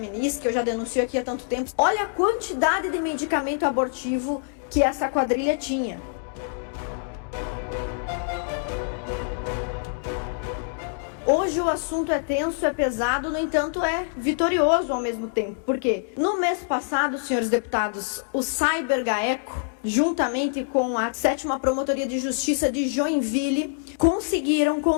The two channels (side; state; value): right; silent; digital silence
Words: que eu já denuncio aqui há tanto tempo. Olha a quantidade de medicamento abortivo que essa quadrilha tinha. Hoje o assunto é tenso, é pesado, no entanto é vitorioso ao mesmo tempo. Por quê? No mês passado, senhores deputados, o Cyber GAECO, juntamente com a 7ª Promotoria de Justiça de Joinville, conseguiram